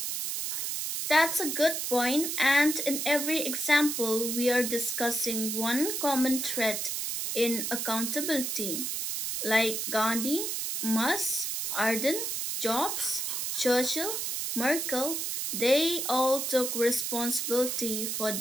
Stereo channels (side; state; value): right; noise; hiss, 2 dB below the sound